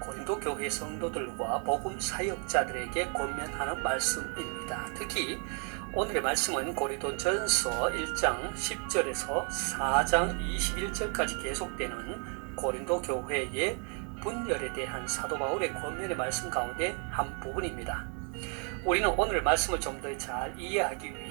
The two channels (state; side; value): quieter; left; 39.5 dB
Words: 고린도 교회 성도들과 복음 사역자들에게 권면하는 말씀입니다. 특히 오늘의 말씀은 고린도전서 1장 10절에서 4장 21절까지 계속되는 고린도 교회의 분열에 대한 사도 바울의 권면의 말씀 가운데 한 부분입니다. 우리는 오늘 말씀을 좀 더 잘 이해하기